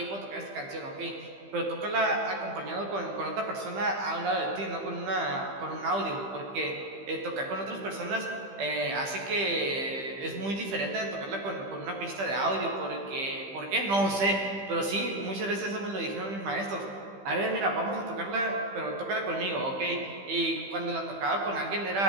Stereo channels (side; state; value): left; late; 15 ms